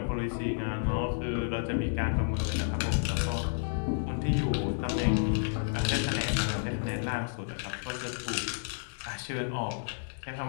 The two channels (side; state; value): right; silent; digital silence